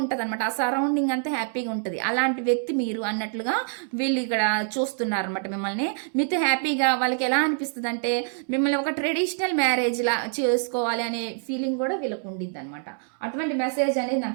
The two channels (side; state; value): left; silent; 61 dB below the other